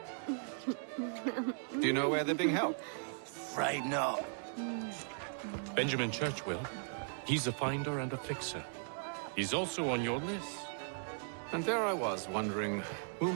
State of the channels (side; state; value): left; silent; digital silence